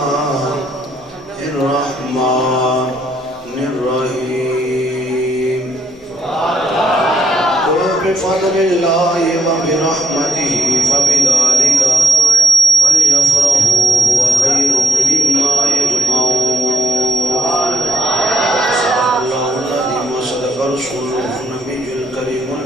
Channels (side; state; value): both; normal; correlation 0.74